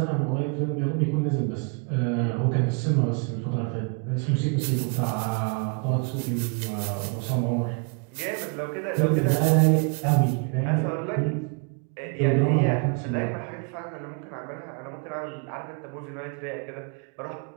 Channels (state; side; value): quieter; left; 35.6 dB